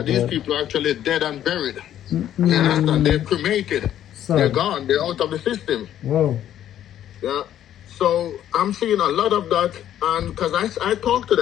These people are actually dead and buried. You understand? They're cremated. They're gone. They're out of the system. Wow. Yeah. So I'm seeing a lot of that, and because I talked to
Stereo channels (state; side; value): quieter; right; 11.2 dB